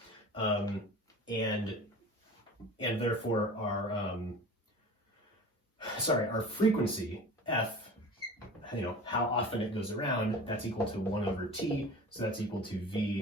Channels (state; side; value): normal; both; correlation 0.38